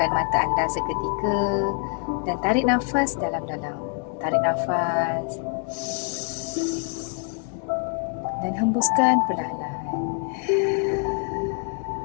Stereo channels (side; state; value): right; quieter; 37.1 dB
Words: mata anda seketika dan tarik nafas dalam-dalam. Tarik nafas dan hembuskan perlahan-lahan.